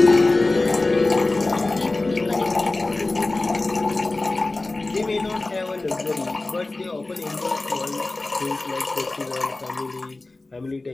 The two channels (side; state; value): right; quieter; 3.1 dB